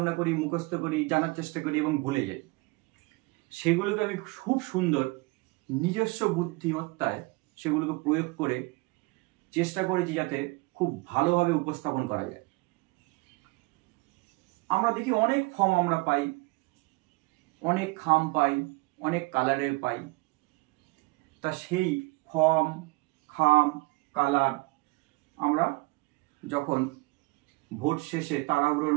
করি, মুখস্থ করি, জানার চেষ্টা করি এবং ভুলে যাই। সেগুলোকে আমি খুব সুন্দর নিজস্ব বুদ্ধিমত্তায় সেগুলোকে প্রয়োগ করে চেষ্টা করেছি যাতে খুব ভালোভাবে উপস্থাপন করা যায়। আমরা দেখি অনেক ফর্ম আমরা পাই, অনেক খাম পাই, অনেক কালারের পাই। তা সেই ফর্ম, খাম, কালার আমরা যখন ভোট শেষে তাড়াহুড়োর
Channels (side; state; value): left; quieter; 24.8 dB